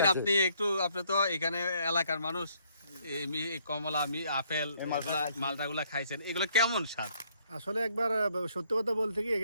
আপনি তো এখানে এলাকার মানুষ, এই কমলা, আপেল, মালটাগুলা খাইছেন, এগুলো কেমন স্বাদ? আসলে একবার সত্যি কথা বলতে কি,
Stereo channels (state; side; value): inverted; both; correlation -0.67